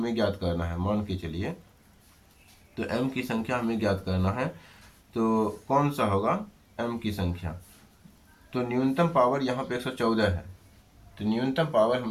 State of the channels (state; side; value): identical; both; correlation 1.00